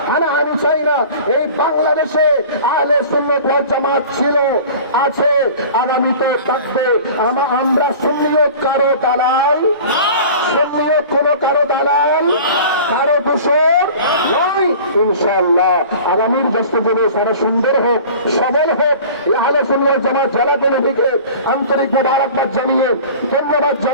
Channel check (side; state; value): both; inverted; correlation -0.41